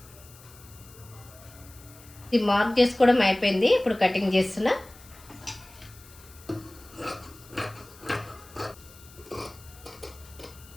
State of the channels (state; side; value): noise; left; hiss, 22 dB below the sound